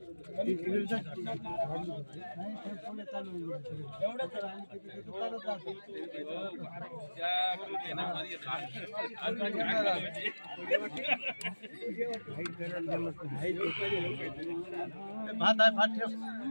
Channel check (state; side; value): inverted; both; correlation -1.00